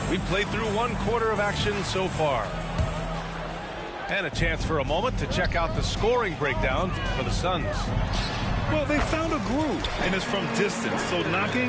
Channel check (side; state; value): both; identical; correlation 1.00